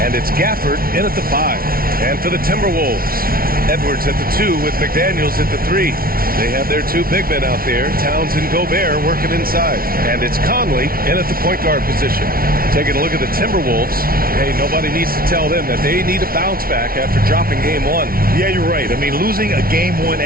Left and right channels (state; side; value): late; left; 0.43 ms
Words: it's Gafford in at the 5. And for the Timberwolves, Edwards at the 2 with McDaniels at the 3. They have their two big men out there, Towns and Gobert, working inside. And it's Conley in at the point guard position. Taking a look at the Timberwolves, hey, nobody needs to tell them that they need a bounce back after dropping Game 1. Yeah, you're right. I mean, losing a Game 1